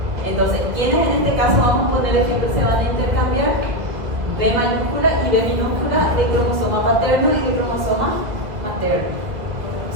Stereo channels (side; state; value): left; late; 1.8 ms